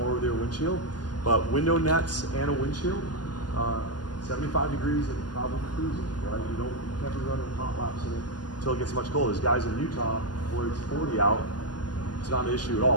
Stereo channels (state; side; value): late; right; 0.70 ms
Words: with their windshield. But window nets and a windshield, 75 degrees and probably cruising, right? You can't be running hot laps in it until it gets much colder. There's guys in Utah where it's 40 out, it's not an issue at